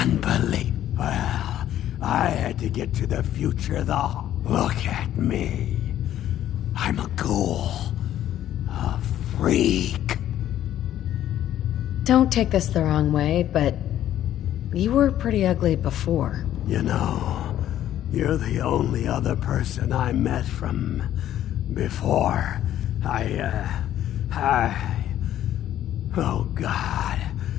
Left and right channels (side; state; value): right; quieter; 11.9 dB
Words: Well, I had to get to the future, though. Look at me. I'm a ghoul. A freak. Don't take this the wrong way, but you were pretty ugly before. You know, you're the only other person I met from before. Oh, God.